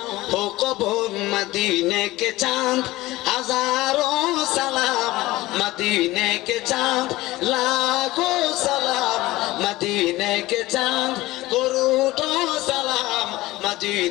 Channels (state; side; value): quieter; right; 18.4 dB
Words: हो कबूल मदीने के चांद हजारों सलाम मदीने के चांद लाखों सलाम मदीने के चांद करोड़ों सलाम